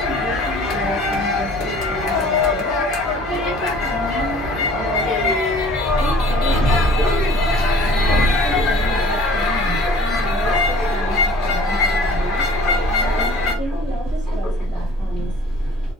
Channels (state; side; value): normal; both; correlation 0.50